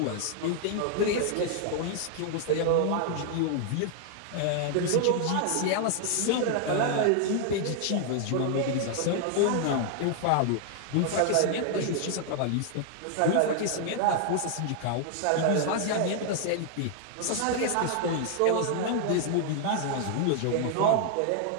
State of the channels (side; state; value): both; different; correlation 0.00